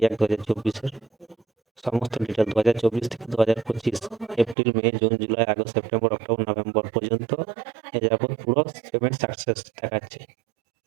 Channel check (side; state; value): left; drops out; at 4.5 s